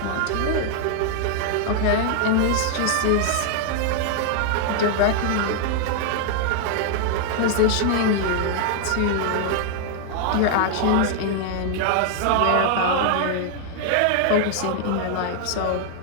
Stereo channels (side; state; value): both; different; correlation 0.00